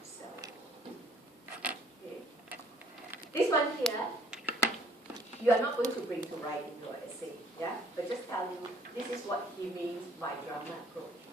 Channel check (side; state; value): both; normal; correlation 0.60